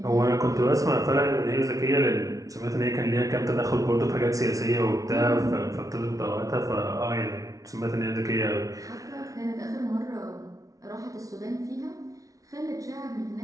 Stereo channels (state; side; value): late; left; 0.17 ms